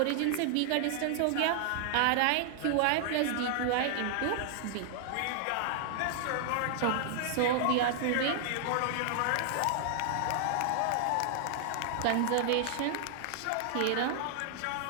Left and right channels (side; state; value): both; different; correlation 0.00